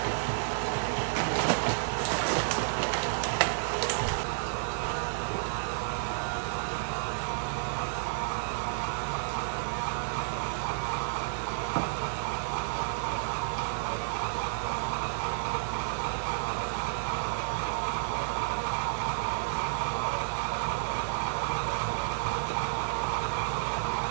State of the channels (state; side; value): silent; left; 57 dB below the other